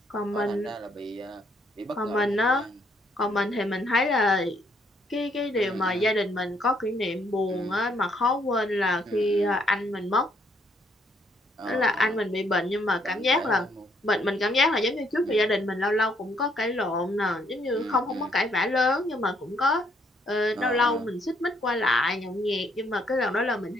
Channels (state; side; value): normal; both; correlation 0.69